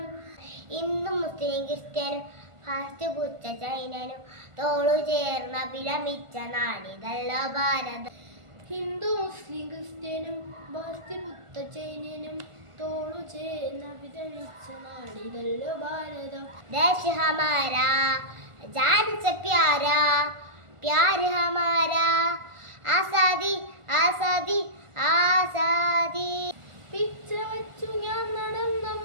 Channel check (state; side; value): late; left; 1.4 ms